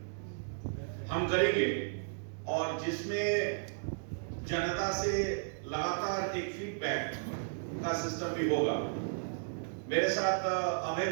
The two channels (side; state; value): left; silent; digital silence